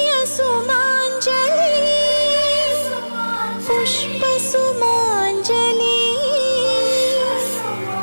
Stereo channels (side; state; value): both; inverted; correlation -1.00